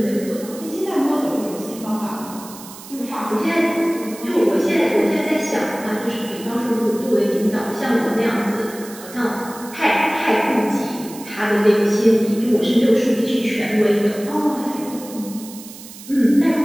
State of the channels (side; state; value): right; noise; hiss, 16 dB below the sound